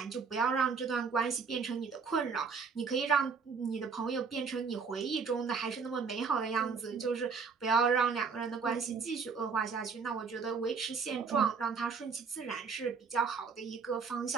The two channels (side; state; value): left; quieter; 5.4 dB